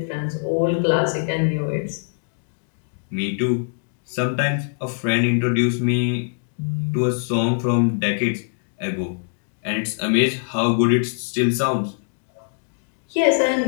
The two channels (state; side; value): silent; right; digital silence